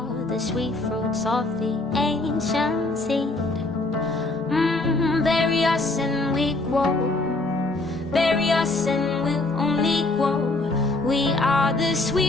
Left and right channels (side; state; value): right; quieter; 3.1 dB